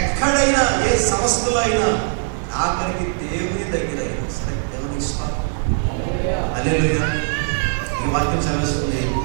ఏ సంస్థలో అయినా ఆఖరికి దేవుని దగ్గర అయినా సరే దేవునికి స్తోత్రం. హల్లెలూయా. ఈ వాక్యం చదివేస్తుంది,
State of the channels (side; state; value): left; silent; 65 dB below the other